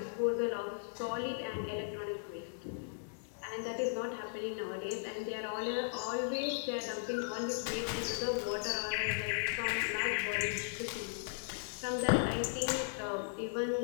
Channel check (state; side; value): silent; right; digital silence